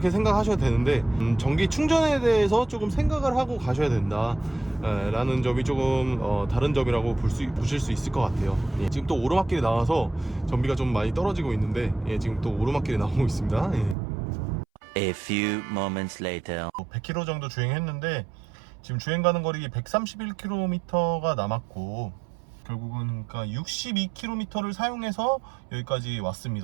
생각하셔야 되는데, 전기 충전에 대해서 조금 생각을 하고 가셔야 된다 라는 점이 조금 다른 점이라고 보실 수 있을 것 같아요. 예, 지금 또 오르막길이 나와서 전비가 좀 많이 떨어지고 있는데, 예, 지금 또 오르막길이 나오고 있습니다. 예. A few moments later. 100km 정도 주행했는데 지금 주행 가는 거리 131km가 남았고, 결국은 그러니까 62km를 사용해서 여기까지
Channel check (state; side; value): drops out; left; at 14.0 s